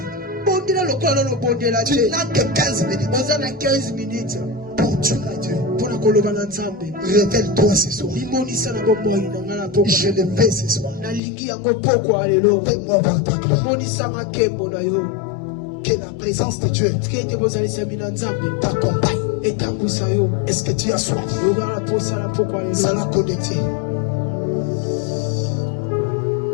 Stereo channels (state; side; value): drops out; right; at 11.2 s